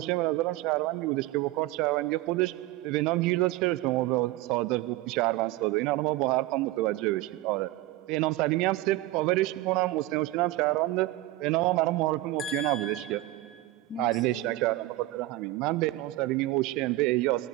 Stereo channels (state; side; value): quieter; left; 17.2 dB